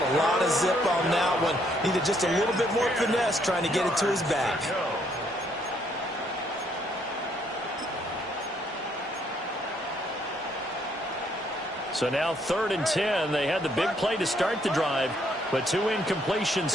a lot of zip on that one. Needed just a little bit more finesse trying to get it to his back. So now 3rd and 10. They had the big play to start the drive, but 2 incompletions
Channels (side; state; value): both; normal; correlation 0.70